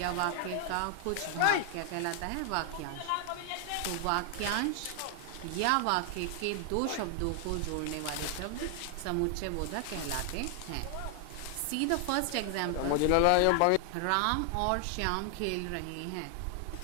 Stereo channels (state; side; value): different; both; correlation 0.00